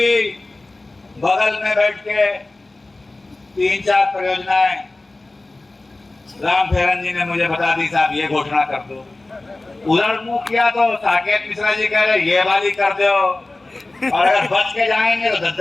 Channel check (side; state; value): right; quieter; 3.0 dB